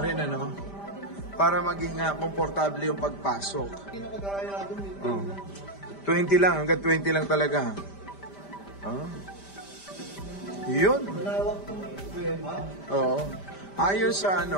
rin, para maging komportable yung pagpasok. Oh. 20 lang, hanggang 20 lang talaga. Oh. Yun. Oo. Ayon sa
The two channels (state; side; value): late; right; 5.0 ms